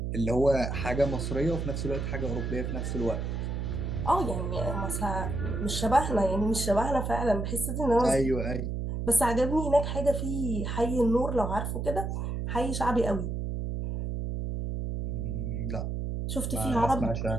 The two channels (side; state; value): right; noise; hum, 2 dB below the sound